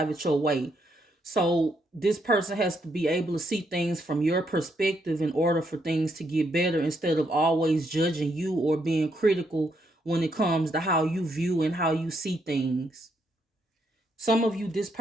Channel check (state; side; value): normal; both; correlation 0.76